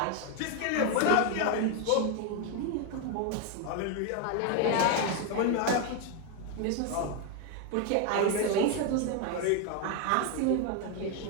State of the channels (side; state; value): both; different; correlation 0.01